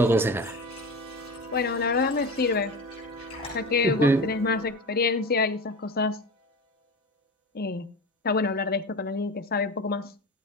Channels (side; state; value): both; normal; correlation 0.28